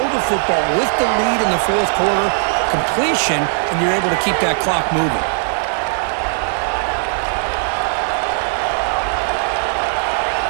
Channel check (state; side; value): silent; left; 67 dB below the other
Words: the football with the lead in the 4th quarter, completion, and you're able to keep that clock moving.